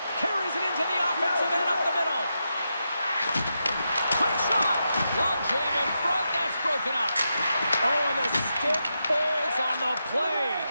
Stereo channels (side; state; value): both; inverted; correlation -0.86